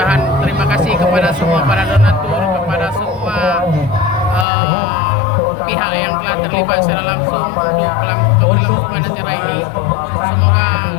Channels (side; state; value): right; drops out; at 4.5 s